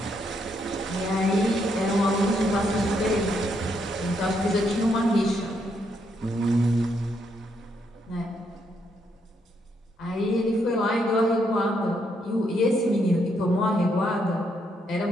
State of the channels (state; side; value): normal; both; correlation 0.76